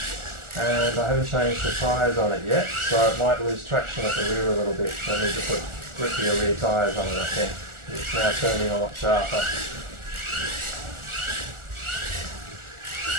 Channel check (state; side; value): late; left; 1.4 ms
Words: and I haven't changed the tyres on it yet, so it might lose traction at the rear a little bit. So I need to put grippier rear tyres on it, I think. It's now turning a lot sharper.